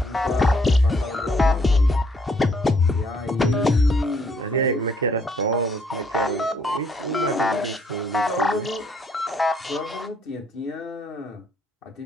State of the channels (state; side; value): normal; both; correlation 0.67